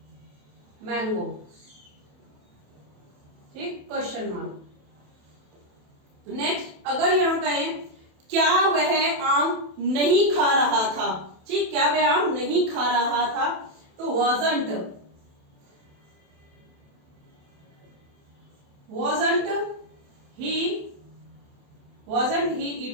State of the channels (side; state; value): left; late; 27 ms